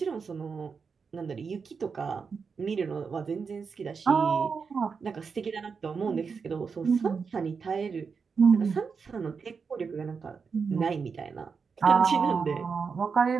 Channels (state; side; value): quieter; left; 5.5 dB